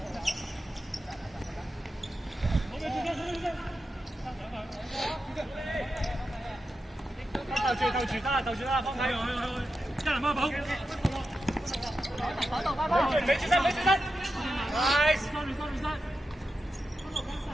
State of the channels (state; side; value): normal; both; correlation 0.90